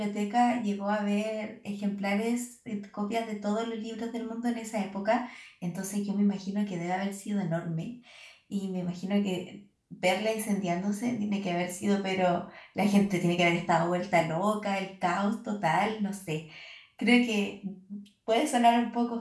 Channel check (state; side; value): identical; both; correlation 1.00